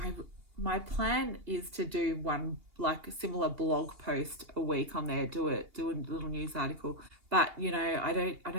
My plan is to do one like a similar blog post a week on there, do a little news article. But you know, I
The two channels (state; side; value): late; left; 2.8 ms